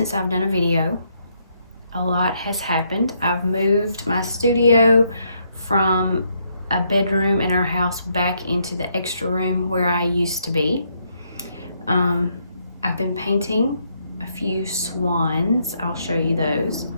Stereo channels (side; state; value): both; inverted; correlation -0.74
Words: I've done a video. A lot has happened. I've moved my studio from a bedroom in our house back into the extra room where I used to be. I've been painting a few swans. I'll show you those.